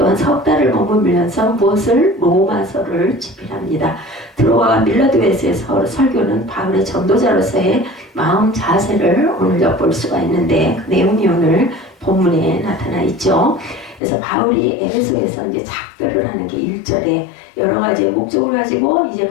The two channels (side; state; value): right; drops out; at 14.0 s